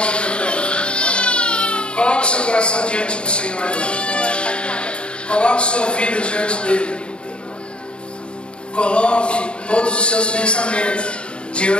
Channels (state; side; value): late; right; 0.054 ms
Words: eterno. Coloque seu coração diante do Senhor. Coloque sua vida diante dele. Coloque todos os seus pensamentos